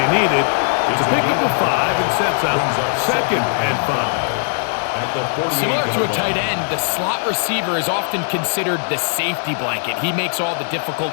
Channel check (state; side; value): silent; right; digital silence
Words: needed It's a pickup of 5 and sets up 2nd and 5. Similar to a tight end, the slot receiver is often considered the safety blanket. He makes all the